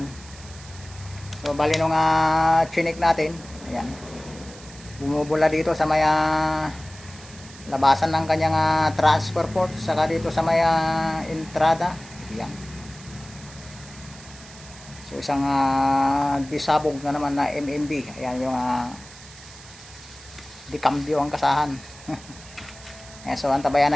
So bali nung chinik natin. Ayan. Bumubula dito sa may labasan ng kanyang transfer port. Saka dito sa may entrada. Ayan. So isang disabog na naman na MMB. Ayan yung dikambyo ang kasahan. Ayan, so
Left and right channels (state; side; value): noise; right; hiss, 19 dB below the sound